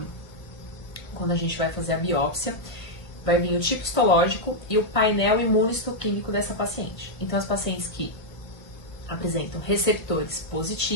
Quando a gente vai fazer a biópsia, vai vir o tipo histológico e o painel imunohistoquímico dessa paciente. Então, as pacientes que apresentam receptores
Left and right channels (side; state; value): right; late; 1.5 ms